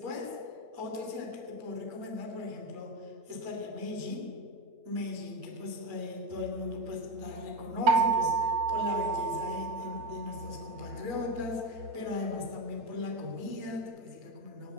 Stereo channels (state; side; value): late; left; 8.9 ms